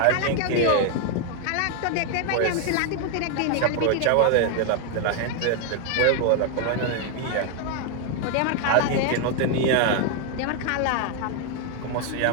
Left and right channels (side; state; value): both; different; correlation 0.00